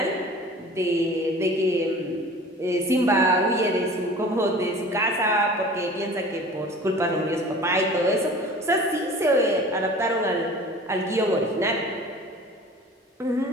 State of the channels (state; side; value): normal; both; correlation 0.43